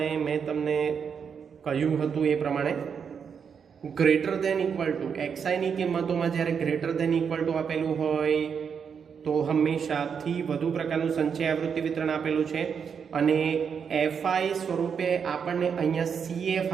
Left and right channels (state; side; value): quieter; left; 6.8 dB